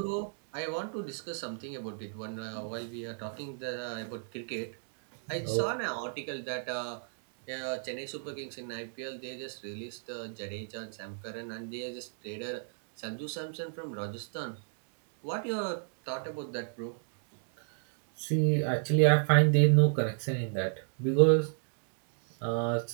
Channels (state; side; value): silent; left; digital silence